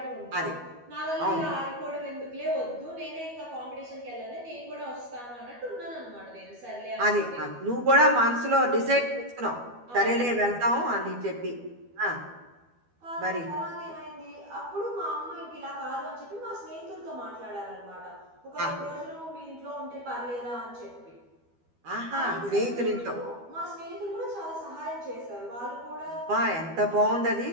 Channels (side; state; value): left; late; 12 ms